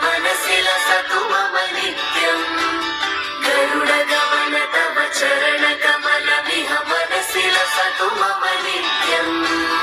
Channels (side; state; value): both; identical; correlation 1.00